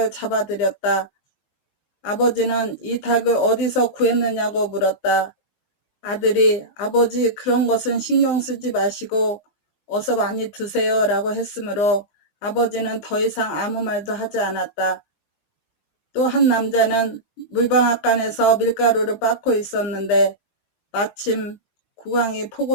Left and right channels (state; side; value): late; right; 20 ms